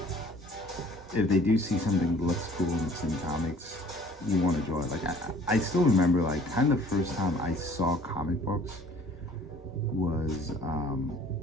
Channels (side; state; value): both; normal; correlation 0.53